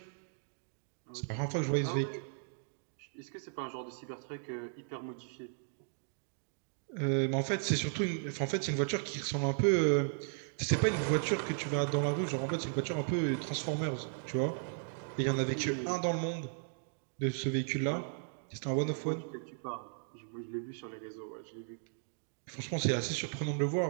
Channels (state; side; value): silent; left; digital silence